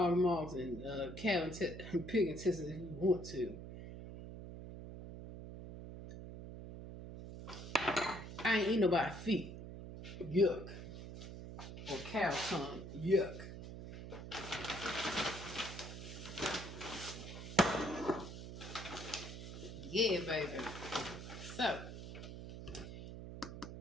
maws, and cow and pig intestines if you want to. I ain't eat nobody's feet. Yuck. Or cow tongue. Yuck. Yeah, baby. So,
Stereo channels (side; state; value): right; noise; hum, 10 dB below the sound